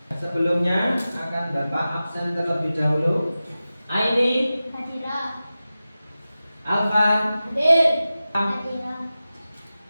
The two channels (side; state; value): both; inverted; correlation -0.95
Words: Sebelumnya akan Bapak absen terlebih dahulu. Aini, Hadira. Alvan, Hadir. Hadira.